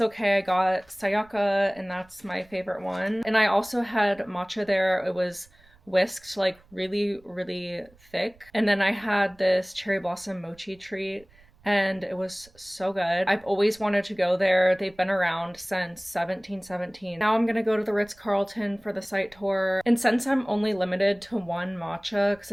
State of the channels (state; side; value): noise; right; rumble, 28 dB below the sound